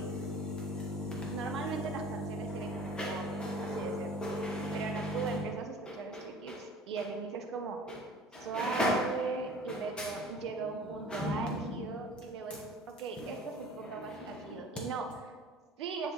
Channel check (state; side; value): normal; both; correlation 0.46